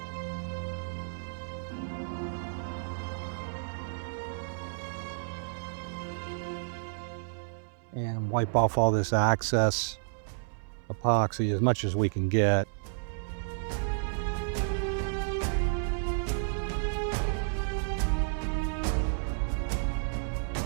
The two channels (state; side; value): silent; left; 57 dB below the other